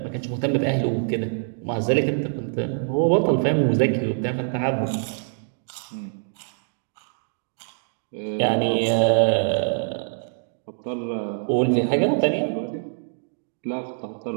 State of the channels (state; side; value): silent; left; digital silence